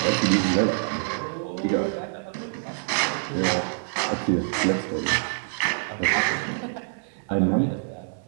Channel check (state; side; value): silent; left; 61 dB below the other